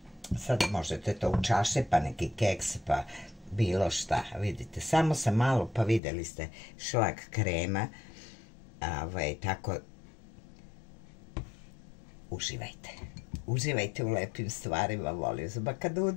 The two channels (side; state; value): right; drops out; at 6.0 s